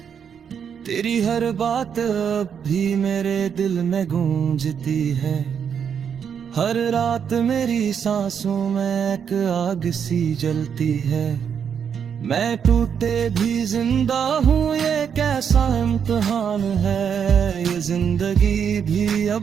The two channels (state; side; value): quieter; left; 7.5 dB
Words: तेरी हर बात अब भी मेरे दिल में गूंजती है। हर रात मेरी सांसों में एक आग सी जलती है। मैं टूटे भी जिंदा हूँ, ये कैसा इम्तिहान है। ये जिंदगी भी